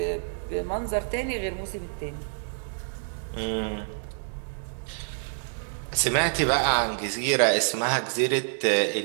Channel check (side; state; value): left; silent; digital silence